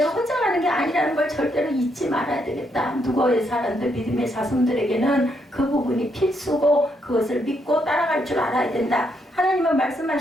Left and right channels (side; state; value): both; normal; correlation 0.76